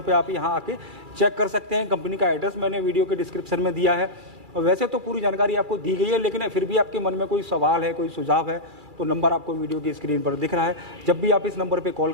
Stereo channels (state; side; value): late; left; 2.3 ms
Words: पे आप यहाँ आके चेक कर सकते हैं। कंपनी का एड्रेस मैंने वीडियो के डिस्क्रिप्शन में दिया है। और वैसे तो पूरी जानकारी आपको दी गई है, लेकिन फिर भी आपके मन में कोई सवाल है, कोई सुझाव है, तो नंबर आपको वीडियो की स्क्रीन पर दिख रहा है। जब भी आप इस नंबर पर कॉल